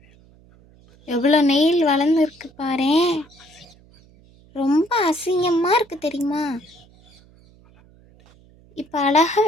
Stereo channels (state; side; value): noise; right; hum, 28 dB below the sound